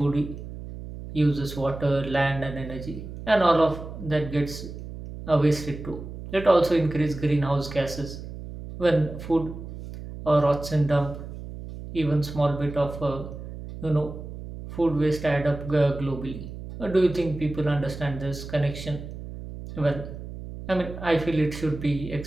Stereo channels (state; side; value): noise; right; hum, 11 dB below the sound